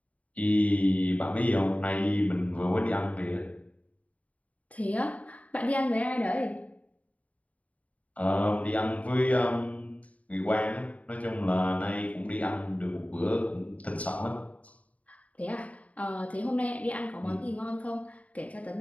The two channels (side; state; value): right; late; 0.068 ms